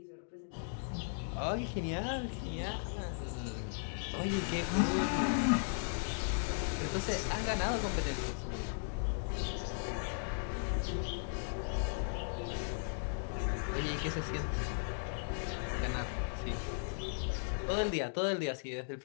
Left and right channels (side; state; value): right; silent; digital silence